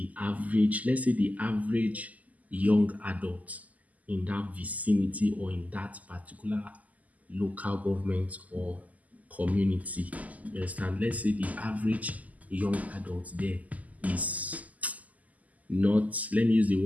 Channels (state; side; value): late; left; 0.076 ms